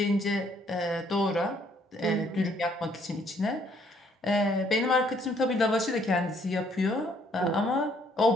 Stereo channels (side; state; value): both; normal; correlation 0.66